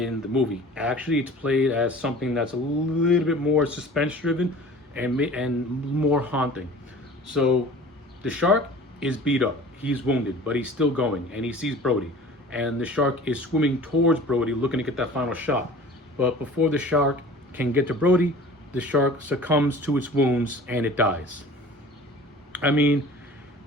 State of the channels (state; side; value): normal; both; correlation 0.43